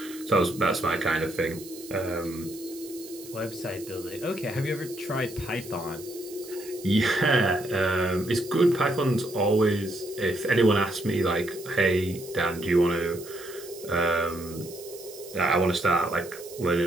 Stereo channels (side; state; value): right; noise; hiss, 17 dB below the sound